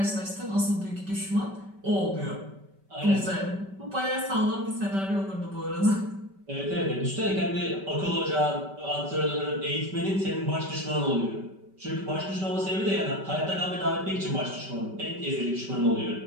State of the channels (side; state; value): left; late; 5.2 ms